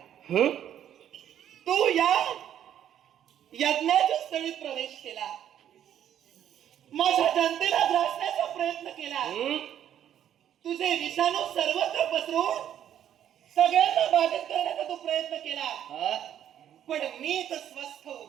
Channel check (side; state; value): left; quieter; 10.4 dB